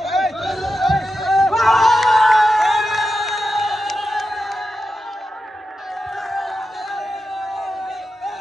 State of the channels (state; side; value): normal; both; correlation 0.90